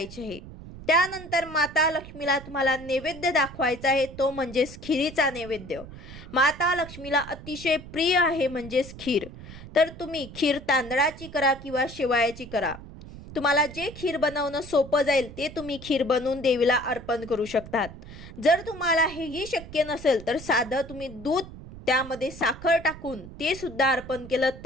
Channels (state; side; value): noise; right; rumble, 15 dB below the sound